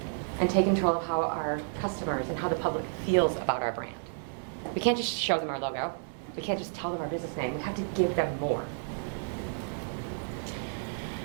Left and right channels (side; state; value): left; silent; 57 dB below the other